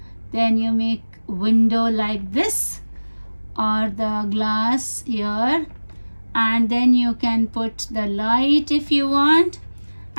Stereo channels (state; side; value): inverted; both; correlation -1.00